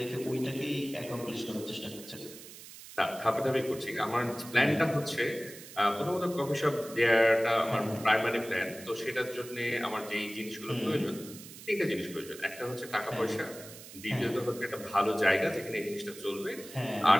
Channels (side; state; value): right; noise; hiss, 16 dB below the sound